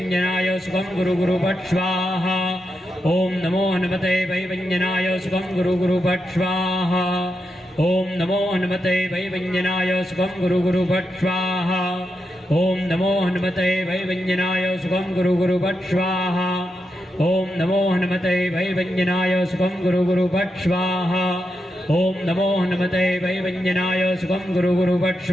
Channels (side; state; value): both; normal; correlation 0.85